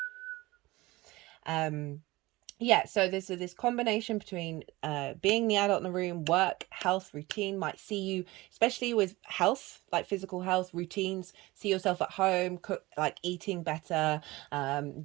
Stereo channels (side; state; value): left; quieter; 20.3 dB